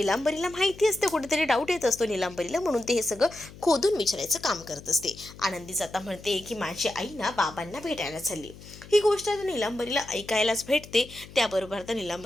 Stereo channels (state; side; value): noise; left; hum, 18 dB below the sound